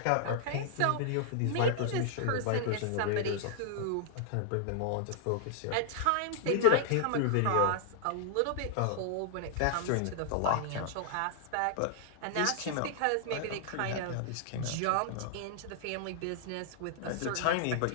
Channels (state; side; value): different; both; correlation -0.01